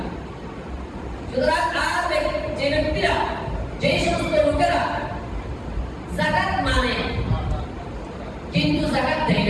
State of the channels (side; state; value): both; identical; correlation 1.00